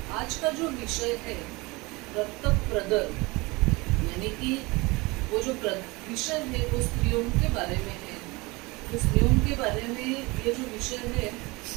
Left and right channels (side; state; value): left; quieter; 24.2 dB